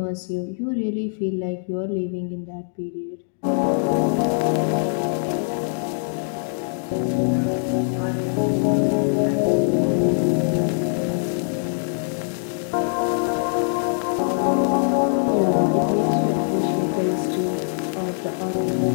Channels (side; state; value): right; silent; digital silence